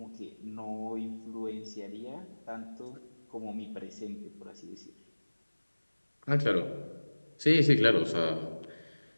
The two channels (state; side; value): inverted; both; correlation -1.00